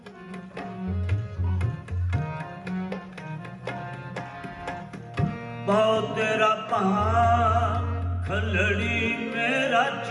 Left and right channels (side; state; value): both; identical; correlation 1.00